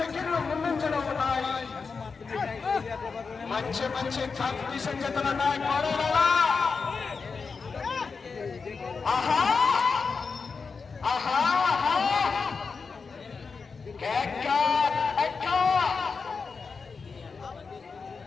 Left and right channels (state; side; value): quieter; right; 5.0 dB